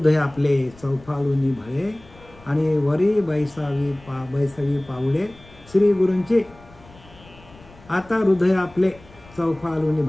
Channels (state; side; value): noise; left; rumble, 24 dB below the sound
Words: आपले चौफाळूनी भळे आणि वरी बैसावी पावले श्री गुरूंचे. आता हृदय आपले चौफाळूनी